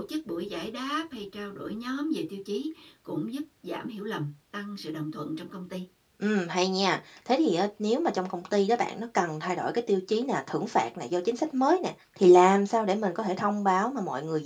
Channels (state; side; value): identical; both; correlation 1.00